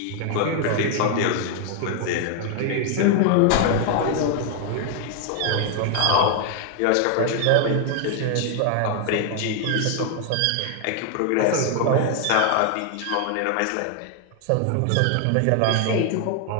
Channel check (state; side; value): different; both; correlation 0.00